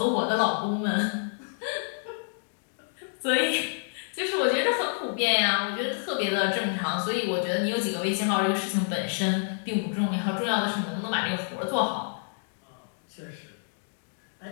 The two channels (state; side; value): silent; right; digital silence